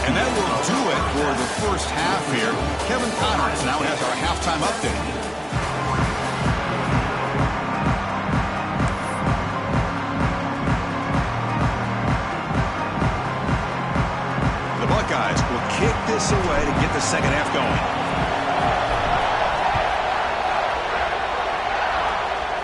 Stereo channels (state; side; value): identical; both; correlation 1.00